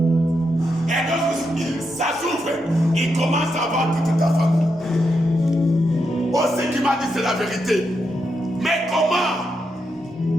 Et lorsque ça s'ouvre, il commence à voir toute ta famille. Oh, ce qu'il m'a dit, c'est la vérité. Mais comment?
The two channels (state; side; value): normal; both; correlation 0.83